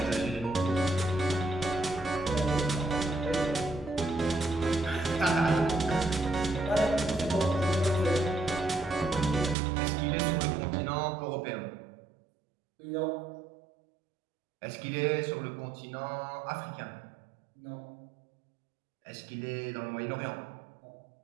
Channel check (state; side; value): drops out; left; at 9.6 s